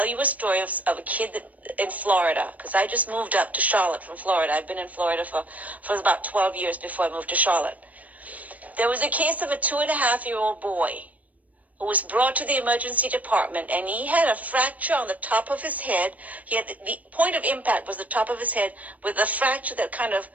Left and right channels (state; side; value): late; left; 0.073 ms